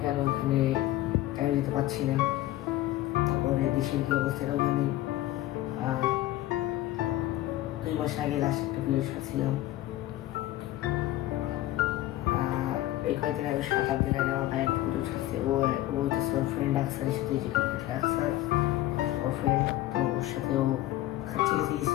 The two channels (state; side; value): quieter; right; 15.5 dB